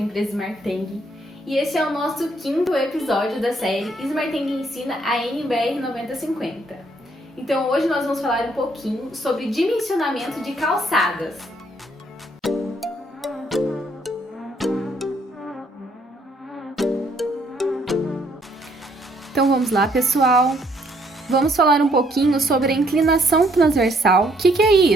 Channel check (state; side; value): normal; both; correlation 0.68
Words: Smarteng e este é o nosso 5º episódio da série Smarteng ensina a NBR 9050. Então hoje nós vamos falar um pouquinho sobre dimensionamento de calçadas. Então vamos lá pessoal, vamos falar um pouquinho sobre a inclinação transversal. O que é